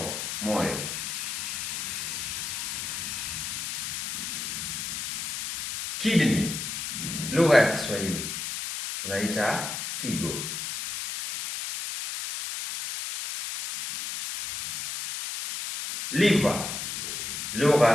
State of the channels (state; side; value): noise; left; hiss, 4 dB below the sound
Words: moyo. Kidney, lugha ya Kiswahili tunaita figo. Liver,